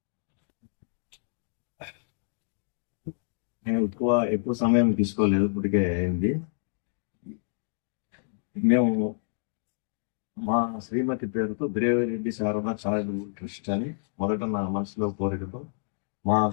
నేను ఎక్కువ సమయం తీసుకోలేదు, ఇప్పటికే అయింది. మేము మా శ్రీమతి పేరుతో దేవిరెడ్డి శారదా చారిటబుల్ ట్రస్ట్ అని మొదట నా మనసులో కోరికతో మా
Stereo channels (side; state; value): right; silent; digital silence